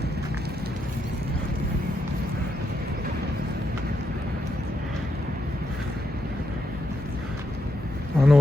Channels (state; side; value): normal; both; correlation 0.81